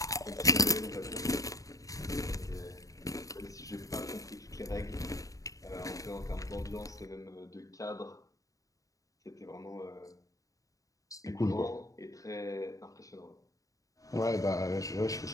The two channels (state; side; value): late; right; 0.16 ms